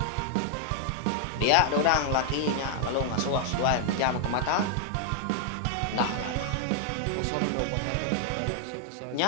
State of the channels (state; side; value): different; both; correlation -0.01